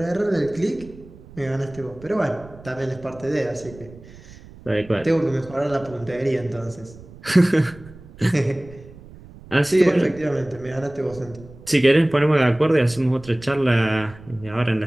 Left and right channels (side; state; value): right; noise; rumble, 20 dB below the sound